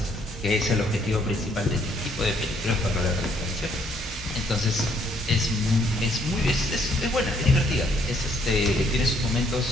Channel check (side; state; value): both; normal; correlation 0.68